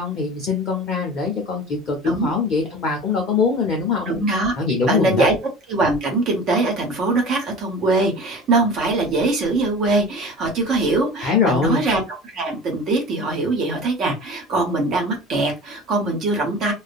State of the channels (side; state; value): both; normal; correlation 0.37